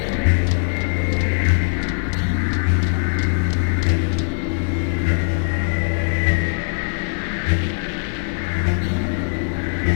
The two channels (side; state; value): right; silent; digital silence